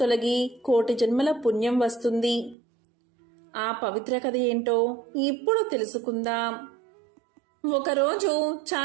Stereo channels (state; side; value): drops out; left; at 2.6 s